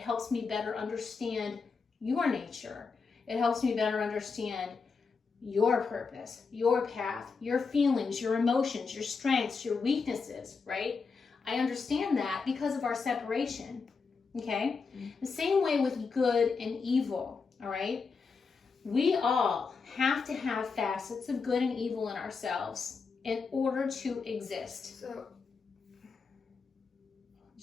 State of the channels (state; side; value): quieter; right; 4.9 dB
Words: me better understand your nature. It helps me better understand your purpose, your path, your feelings, your emotions, your strengths, your weaknesses, right? I understand that because of our separation, okay? The same way with good and evil, all right? We all have to have facets of good and evil in ourselves in order to exist. So,